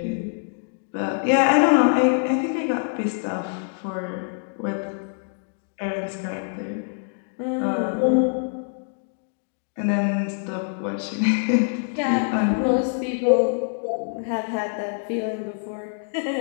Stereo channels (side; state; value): right; silent; digital silence